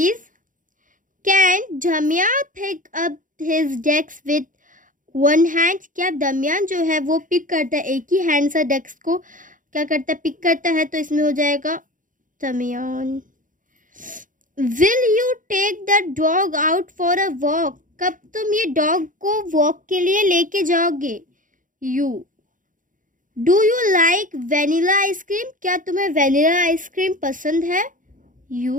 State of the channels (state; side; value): late; left; 0.38 ms